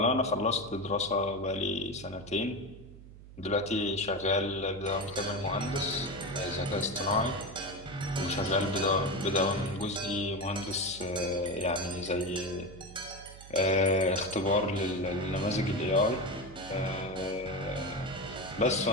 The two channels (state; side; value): noise; right; hum, 17 dB below the sound